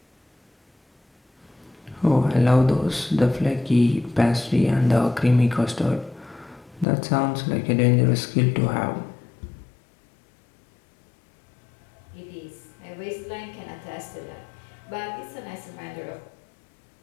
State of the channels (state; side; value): drops out; right; at 6.9 s